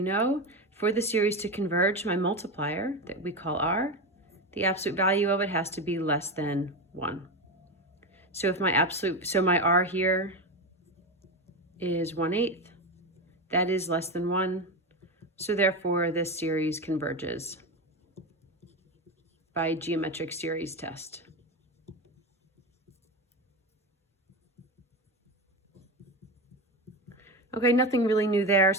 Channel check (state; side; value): normal; both; correlation 0.18